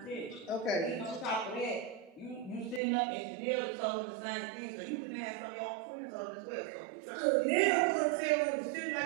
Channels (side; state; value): left; drops out; at 2.8 s